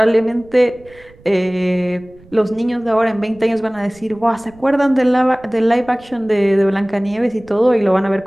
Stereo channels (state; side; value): noise; right; rumble, 26 dB below the sound